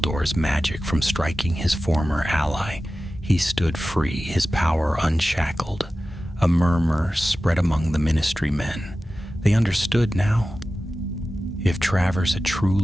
magic from striking his former ally. He stood free, his power unshackled. A murmur spread among the Ministry men. They understood now. If Travers had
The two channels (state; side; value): normal; both; correlation 0.95